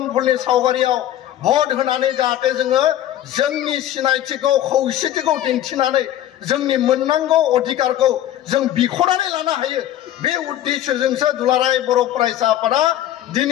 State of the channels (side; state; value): right; quieter; 12.4 dB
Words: फुलनि सावगारियाव भोट होनानै जाहाथे जोङो जोंनि सिनायथिखौ खौसेथिखौ दिन्थिनानै जोंनि मोननांगौ अधिकारखौ जों बिख'नानै लानो हायो बे उद्देश्यजोंसो दुलाराय बर' फरायसा आफादा